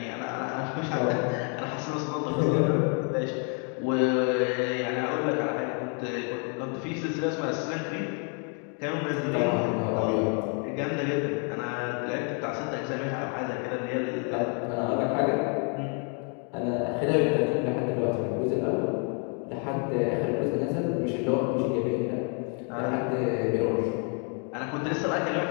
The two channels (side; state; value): right; quieter; 39.8 dB